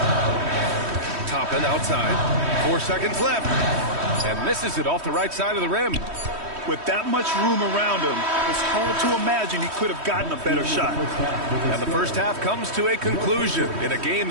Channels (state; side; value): late; left; 3.1 ms